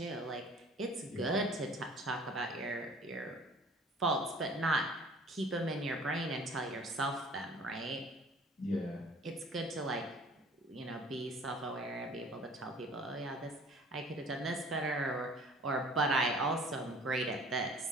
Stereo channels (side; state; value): both; normal; correlation 0.50